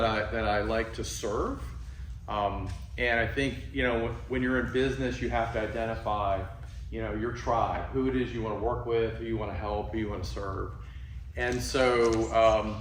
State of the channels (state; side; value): identical; both; correlation 1.00